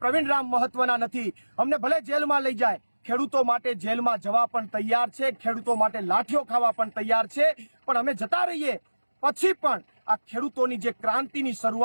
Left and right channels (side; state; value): both; inverted; correlation -1.00